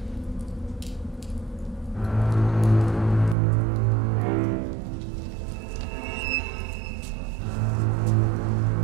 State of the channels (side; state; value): left; drops out; at 3.4 s